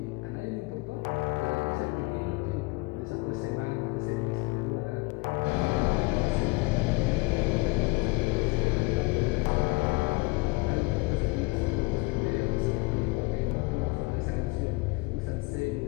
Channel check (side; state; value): right; quieter; 25.1 dB